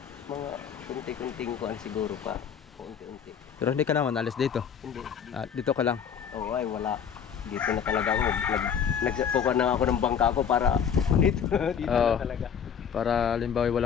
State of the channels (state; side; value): quieter; right; 7.7 dB